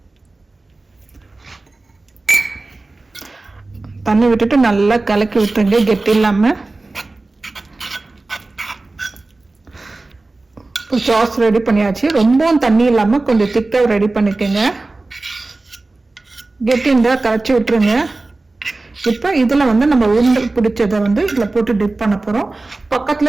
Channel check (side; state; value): left; quieter; 3.2 dB